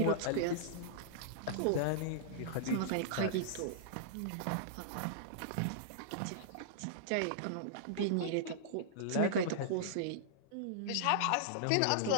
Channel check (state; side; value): different; both; correlation -0.02